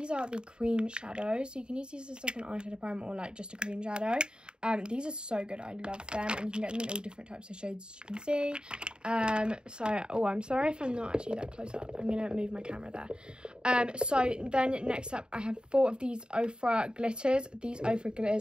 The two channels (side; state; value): left; late; 0.049 ms